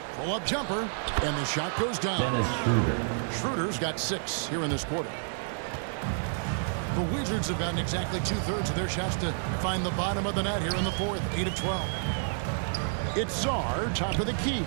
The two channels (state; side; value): silent; left; digital silence